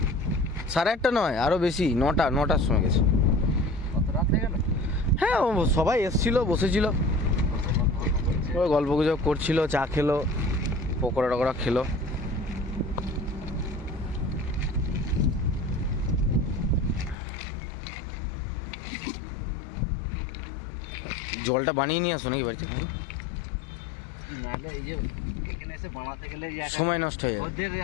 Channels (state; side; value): drops out; right; at 17.2 s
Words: 8:30 নয়, আরও বেশি, 9টার সময় গেছে। হ্যাঁ, ও সবাই এসছিল, বসেছিল, ওই গল্প গুজব করছিল, চা খেলো, পকোড়া টকোড়া খেলো। জলটা বানিয়ে নিয়ে আসো নাকি বাড়িতে? সময় নষ্ট হয়ে যাবে,